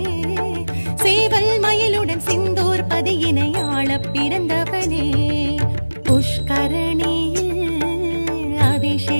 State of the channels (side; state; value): both; inverted; correlation -1.00